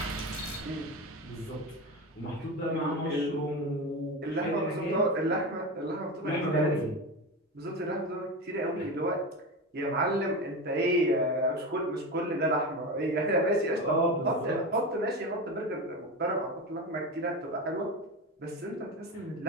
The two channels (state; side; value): normal; both; correlation 0.22